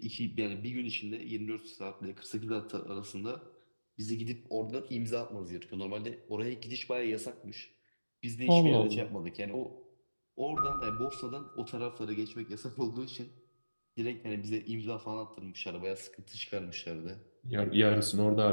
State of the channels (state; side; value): inverted; both; correlation -1.00